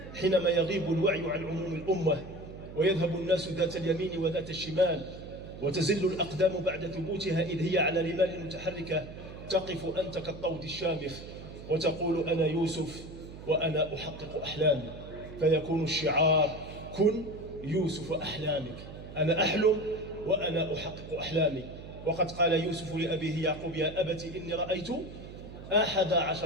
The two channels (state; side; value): noise; right; hum, 13 dB below the sound